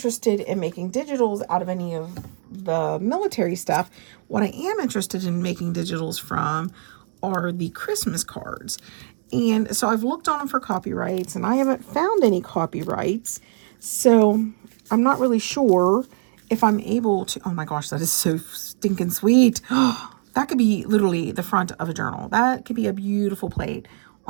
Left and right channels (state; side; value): silent; left; digital silence